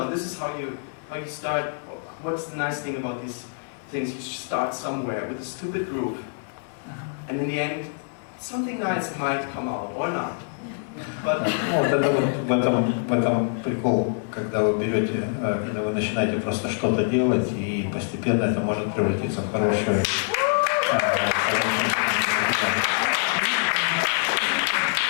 This is how you start. What's the nice thing about these things? You start somewhere with a stupid groove, and in the end, something nice might come out or not. But вот это вот в этом прикол, когда вы берете, когда вы начинаете просто что-то делать, и постепенно это может превратиться в хорошее.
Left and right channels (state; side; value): silent; right; 62 dB below the other